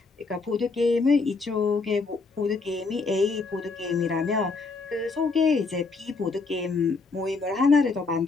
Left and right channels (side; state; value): right; quieter; 4.1 dB